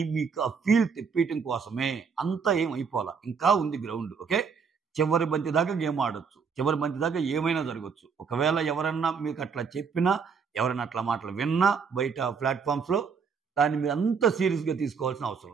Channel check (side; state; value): left; quieter; 5.9 dB